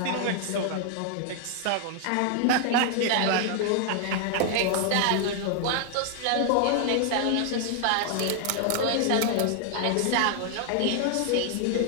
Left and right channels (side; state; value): both; different; correlation 0.00